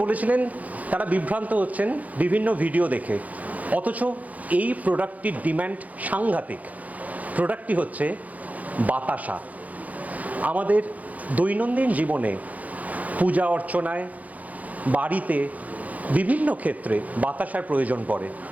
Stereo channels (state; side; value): late; left; 0.075 ms